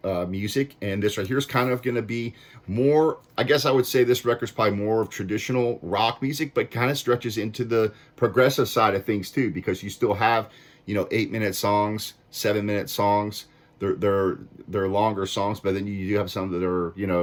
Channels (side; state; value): both; identical; correlation 1.00